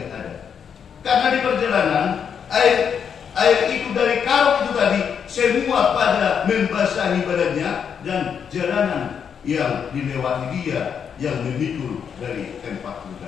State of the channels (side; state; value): right; quieter; 7.4 dB